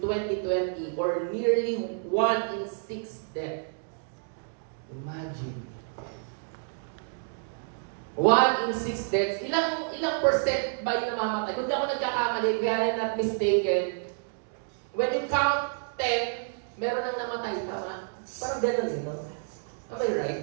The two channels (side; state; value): left; silent; digital silence